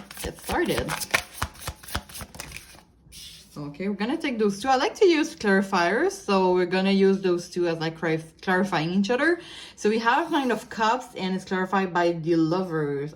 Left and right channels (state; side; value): identical; both; correlation 1.00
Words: get started. Okay, we're gonna take those two. I like to use clarifiers, so we're gonna use those two as like clarifying each other. So we have Nine of Cups, and it's clarified by the Lovers.